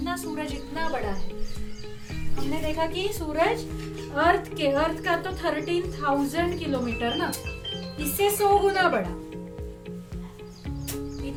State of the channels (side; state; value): both; identical; correlation 1.00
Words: सूरज इतना बड़ा है, हमने देखा कि सूरज अर्थ का तो 13,000 किलोमीटर ना, इससे 100 गुना बड़ा,